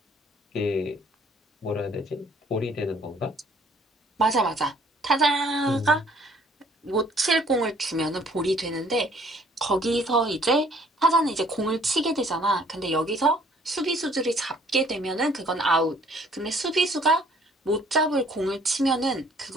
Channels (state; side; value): normal; both; correlation 0.59